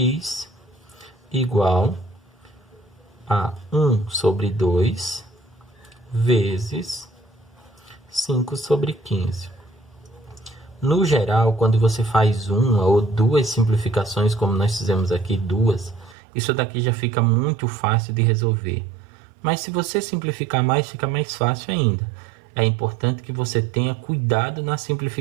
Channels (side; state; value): left; drops out; at 16.2 s